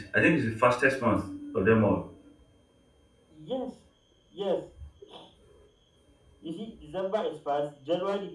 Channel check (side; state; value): both; identical; correlation 1.00